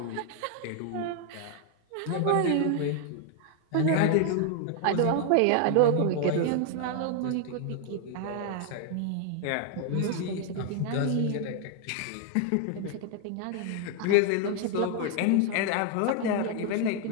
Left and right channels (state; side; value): different; both; correlation 0.00